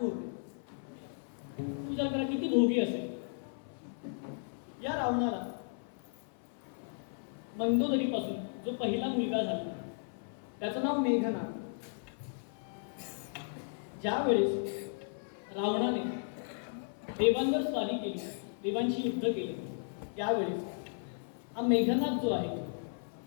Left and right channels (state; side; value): silent; right; 54 dB below the other